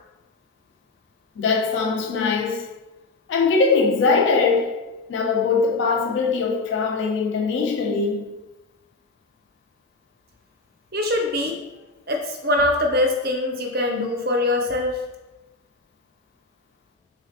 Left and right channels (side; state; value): right; quieter; 3.3 dB